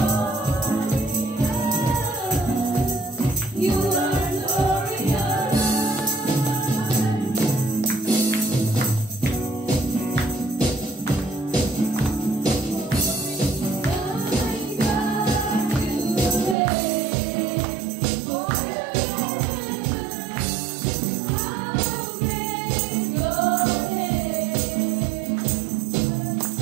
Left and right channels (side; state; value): left; drops out; at 16.6 s